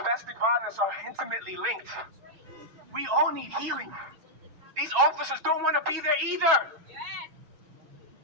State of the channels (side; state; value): left; late; 6.2 ms